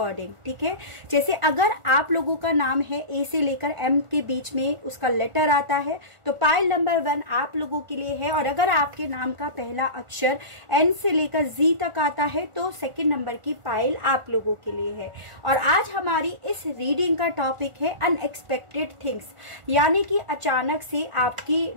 ठीक है, जैसे अगर आप लोगों का नाम है ए से लेकर एम के बीच में उसका लेटर आता है तो पाइल नंबर 1 आप लोगों के लिए है, और अगर आपके नाम का पहला अक्षर एन से लेकर जी तक आता है तो सेकंड नंबर की पाइल आप लोगों के लिए है। और आज हमारी इस रीडिंग का टॉपिक है अनएक्सपेक्टेड थिंग्स, यानी कि अचानक से आपकी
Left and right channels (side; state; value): left; late; 1.4 ms